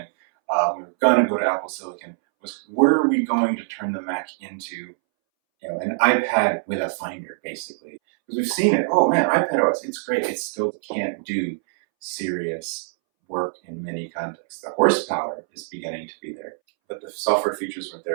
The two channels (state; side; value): silent; left; 63 dB below the other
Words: we were going to go to Apple Silicon, was were we going to turn the Mac into an iPad with a Finder, basically? Because we've seen it. Oh man, iPadOS, it's great. It still can't do serious work in many contexts. The horsepower is beginning to be there, but the software features weren't